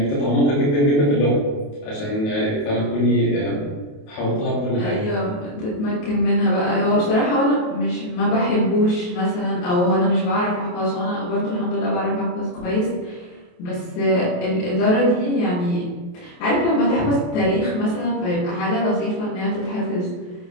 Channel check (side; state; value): right; late; 28 ms